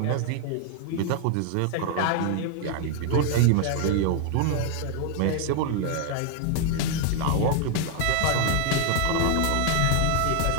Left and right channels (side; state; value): both; different; correlation 0.00